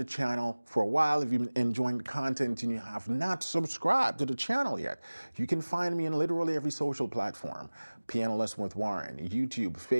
channel for a while, if you've been enjoying the content and you have not subscribed to the channel yet, you can find me in literally every social platform. Piano Lesson with Warren, YouTube,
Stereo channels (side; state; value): both; inverted; correlation -1.00